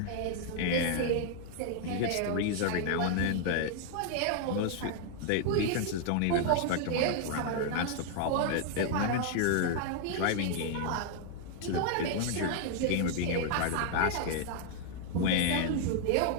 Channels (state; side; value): different; both; correlation 0.00